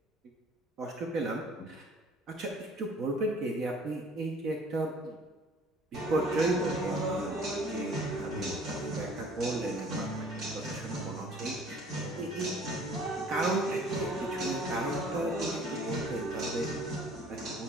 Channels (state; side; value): normal; both; correlation 0.53